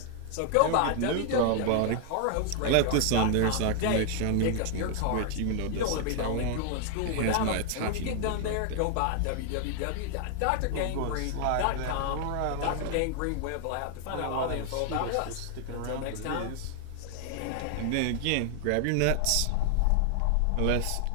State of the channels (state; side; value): different; both; correlation 0.00